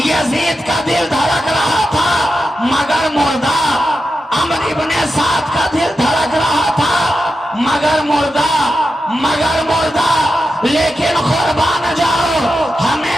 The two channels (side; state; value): both; normal; correlation 0.89